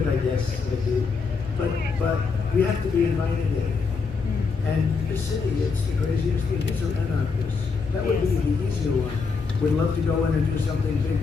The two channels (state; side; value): quieter; right; 4.9 dB